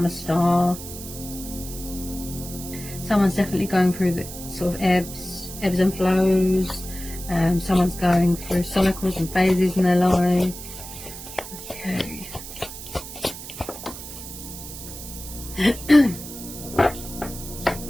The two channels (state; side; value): noise; right; hiss, 12 dB below the sound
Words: a star. Someone's definitely going through the sort of ebbs and flows. Someone's going through cycles and phases in their life. Okay.